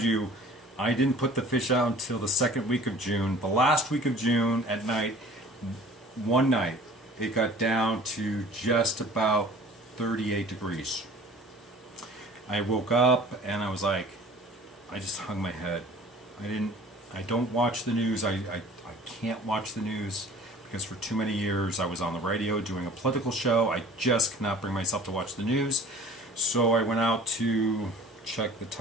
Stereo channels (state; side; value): normal; both; correlation 0.47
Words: you, I didn't put the fish out until the second week of June. The last week of June at night, one night, it got down to just about 38 degrees. I woke up and I was like, I just hung my head. I don't watch the news. I can't watch the news because for too many years I was on the radio doing a political show. I just cannot bring myself to watch the news. So I went out to check the